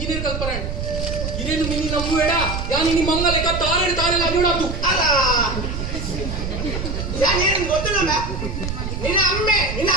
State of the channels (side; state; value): right; noise; rumble, 4 dB below the sound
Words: ಕಲ್ಪನೆ ಇರೇನು ಮಿನಿ ನಮ್ಮು ಬೇಡ ಯಾ ನಿನ್ನ ಮಂಗ ಲೆಕ್ಕ ತಾರೇನು ತಾರೆಲ್ಲ ಅಡ್ಡಾತು ಅಲ್ಲ ಯಾನೇನು ಗೊತ್ತಿಲ್ಲ ನಿನ್ನ ಅಮ್ಮೆ